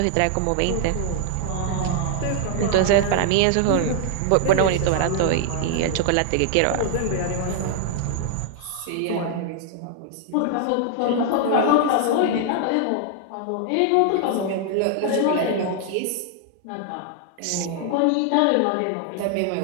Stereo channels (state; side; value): different; both; correlation 0.00